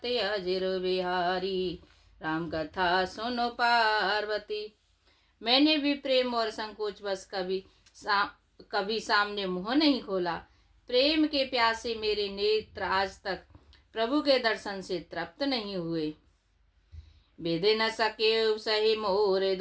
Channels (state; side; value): identical; both; correlation 1.00